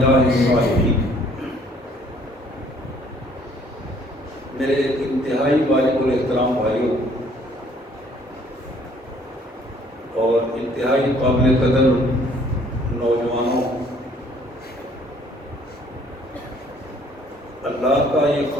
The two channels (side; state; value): both; normal; correlation 0.60